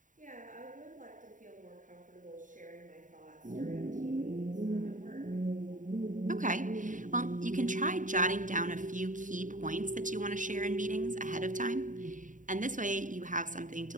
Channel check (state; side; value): late; left; 0.38 ms